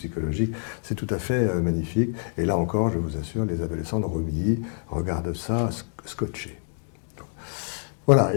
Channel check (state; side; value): silent; right; 61 dB below the other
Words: C'est tout à fait magnifique. Et là encore, je vous assure, les adolescents de Romilly regardent ça scotchés. Voilà,